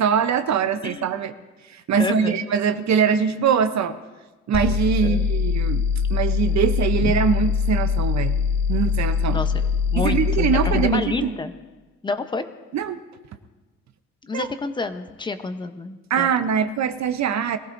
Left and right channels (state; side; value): normal; both; correlation 0.26